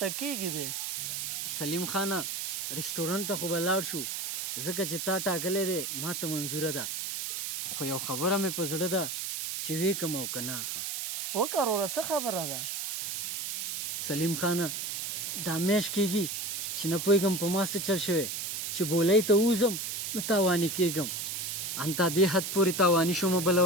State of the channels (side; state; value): right; noise; hiss, 3 dB below the sound